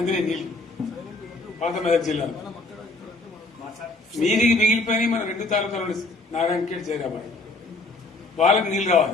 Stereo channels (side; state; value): right; quieter; 3.1 dB